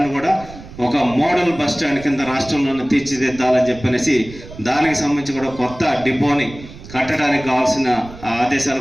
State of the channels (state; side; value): noise; right; rumble, 17 dB below the sound